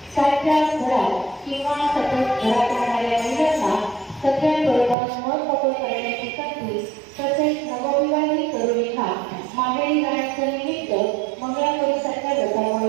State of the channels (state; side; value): drops out; left; at 5.0 s